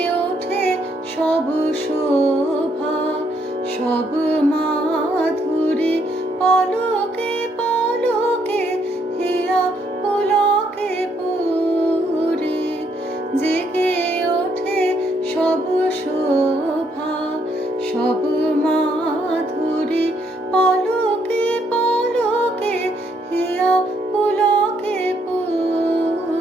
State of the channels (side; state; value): both; normal; correlation 0.72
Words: ওঠে সব শোভা সব মাধুরী, পলকে পলকে হিয়া পুলকে পুরি। জেগে ওঠে সব শোভা সব মাধুরী, পলকে পলকে হিয়া পুলকে